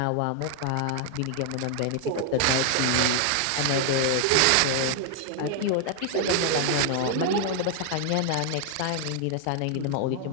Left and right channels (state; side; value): different; both; correlation 0.00